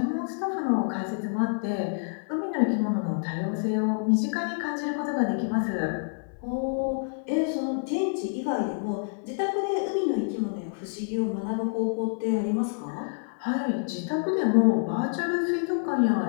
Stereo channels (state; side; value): silent; right; digital silence